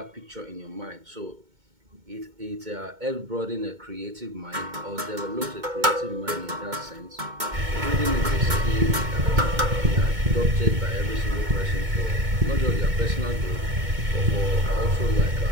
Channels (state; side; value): late; left; 2.2 ms